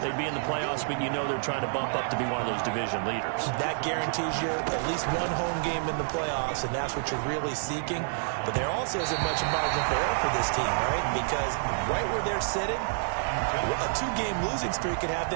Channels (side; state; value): left; silent; digital silence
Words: They'd be in the playoffs, but you know they're trying to bump up to be one of those division leaders. That guarantees you at least one home game in the playoffs, and that's what you're really seeking. But there also isn't much margin for error for this team, right? Because right where they're sitting, a two-game losing streak could have